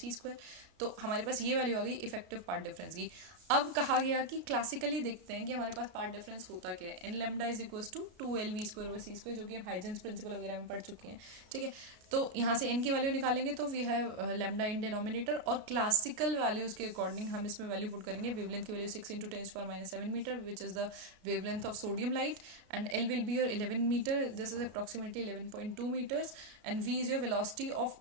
तो हमारे पास ये वैल्यू आ गई इफेक्टिव पार्ट डिफरेंस की। अब कहा गया कि क्लासिकली देखते हैं कि हमारे पास पार्ट डिफरेंस होता क्या है, N lambda is equals to 2lv²/c², जो कि हम हाइजेंस प्रिंसिपल वगैरह में पढ़ चुके हैं, ठीक है। तो यहाँ से n की वैल्यू निकालेंगे तो we have lambda in denominator, और क्लासिकल वैल्यूज के अकॉर्डिंग हम इसमें वैल्यू पुट करेंगे। वेवलेंथ की value 6 × 10⁻⁷ metre, which is the wavelength of sodium light, and l will be your 11 metre, this is approximately 11.2 metres, and v is your velocity of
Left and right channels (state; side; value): late; left; 33 ms